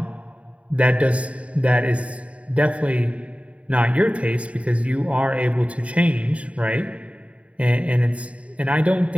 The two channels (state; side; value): late; left; 0.065 ms